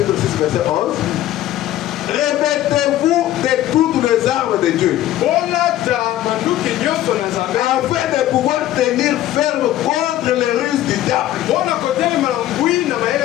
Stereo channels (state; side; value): quieter; right; 13.6 dB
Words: 6, verset 11. Revêtez-vous de toutes les armes de Dieu, afin de pouvoir tenir ferme contre les ruses du diable.